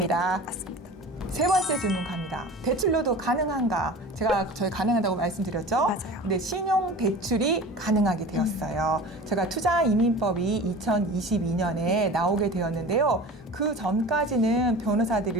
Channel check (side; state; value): both; normal; correlation 0.37